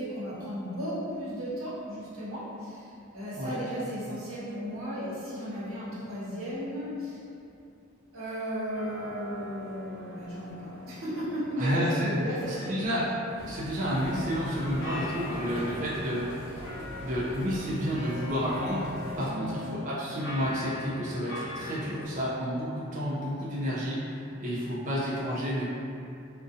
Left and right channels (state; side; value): normal; both; correlation 0.47